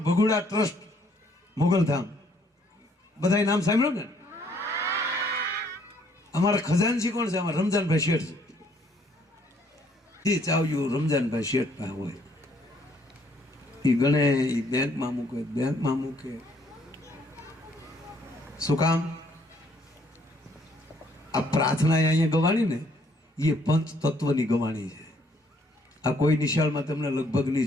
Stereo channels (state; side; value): normal; both; correlation 0.65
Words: ભગુડા ટ્રસ્ટ મોગલધામ બધાય નામ સાંભળ્યું ને? અમારા ખજાનચી કોણ છે? અમારા રમજાનભાઈ શેઠ છે. એ ચાવ્યું રમજાનભાઈ શેઠ પાસે હોય, એ ગણે, એ બેંકમાં મૂકે. શું કામ? આ પ્રાર્થના અહીંયા ગવાણી ને એ પંચ તત્વની ગવાણી છે. આ કોઈ નિશાળમાં તમને લગભગ